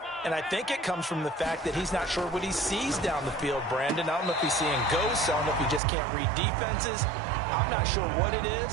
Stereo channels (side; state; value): left; drops out; at 5.8 s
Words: And I think it comes from the fact that he's not sure what he sees down the field, Brandon. I don't know if he's seeing ghosts. I don't know if he just can't read defenses. I'm not sure what it